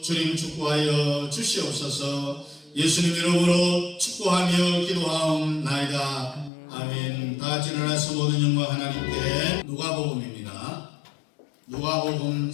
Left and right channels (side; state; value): right; drops out; at 6.5 s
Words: 주님 축복하여 주시옵소서. 예수님 이름으로 축복하며 기도하옵나이다. 아멘. 다 같이 일어나서 모든 영광 하나님께. 누가복음입니다. 누가복음